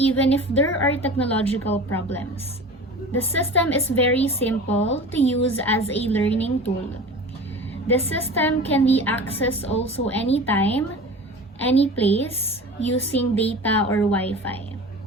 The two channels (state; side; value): normal; both; correlation 0.37